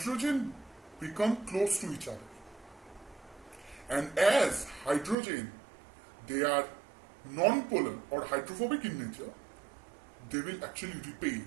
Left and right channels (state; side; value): drops out; left; at 5.2 s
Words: become close to each other, and as hydrogen, they are non-polar or hydrophobic in nature, they will actually repel,